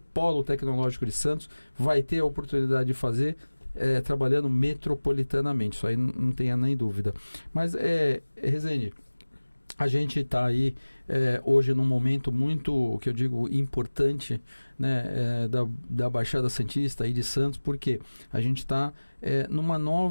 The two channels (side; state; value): both; inverted; correlation -1.00